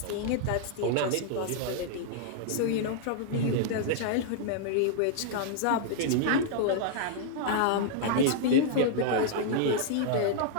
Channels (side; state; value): both; different; correlation -0.01